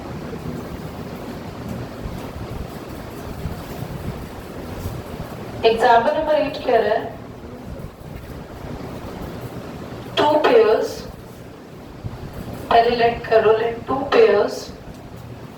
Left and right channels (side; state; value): both; identical; correlation 1.00